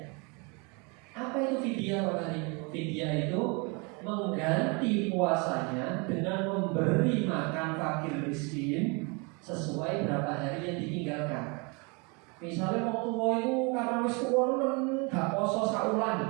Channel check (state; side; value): quieter; left; 31.0 dB